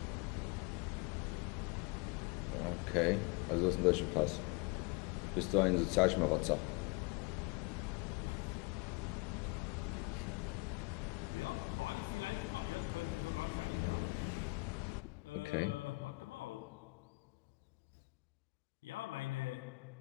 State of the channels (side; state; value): right; quieter; 26.8 dB